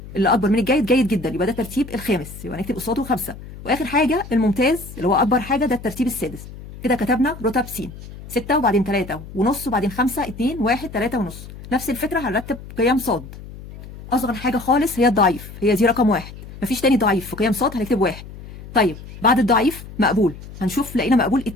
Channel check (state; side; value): noise; left; hum, 15 dB below the sound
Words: اللي اكبر من الجيد جيد جدا، يبقى ده الترتيب الخامس، يبقى نكتب قصاده 5. واخر حاجه الممتاز اللي هو اكبر حاجه، ده الترتيب السادس. كده كتبنا رتب س 6 وبعدين 3.5 وبعدين 5 2 1 3.5. نفس الفكره هنرتب قيم ص. اصغر حاجه خالص هي الضعيف، هي دي رقم 1، مفيش تاني ضعيف في قيم ص، هنكتب 1. طيب بعد الضعيف مقبول، هنشوف لقينا مقبول